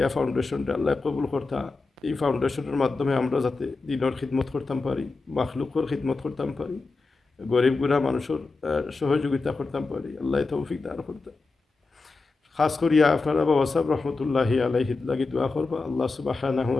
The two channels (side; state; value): right; quieter; 3.8 dB